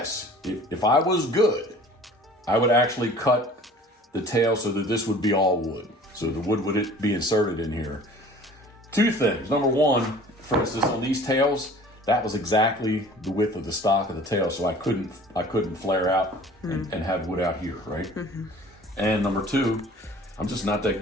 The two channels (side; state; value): both; normal; correlation 0.47